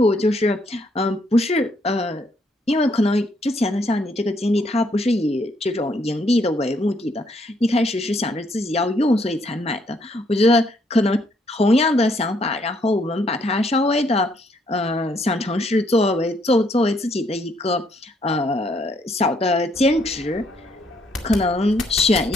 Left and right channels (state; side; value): normal; both; correlation 0.70